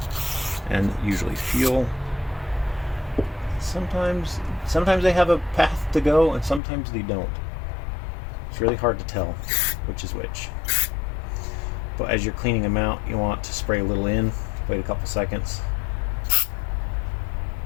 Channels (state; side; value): drops out; right; at 6.6 s